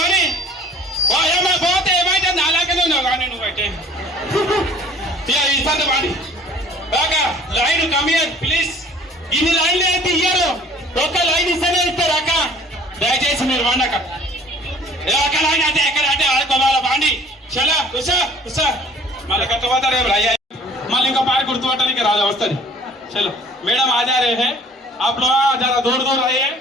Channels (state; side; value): normal; both; correlation 0.52